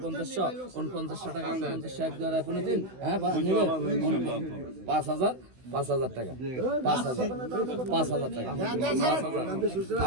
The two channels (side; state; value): left; late; 16 ms